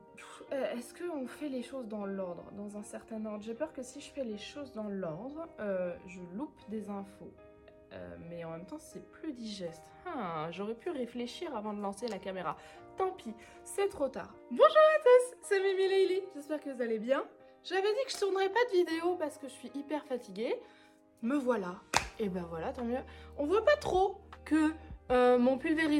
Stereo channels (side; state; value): both; identical; correlation 1.00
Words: est-ce qu'on fait les choses dans l'ordre, dans un certain ordre? J'ai peur que si je fais les choses dans l'ordre, je loupe des infos. Mais en même temps, c'est plus digeste. J'aurais pu réfléchir avant de lancer la caméra. Tant pis, c'est trop tard. Bonjour à tous, c'est Mimi Leili. J'espère que vous allez bien. J'avais dit que je tournerais pas de vidéo parce que je suis hyper fatiguée. Me voilà. Et ben voilà, tant mieux. On voit pas trop que mon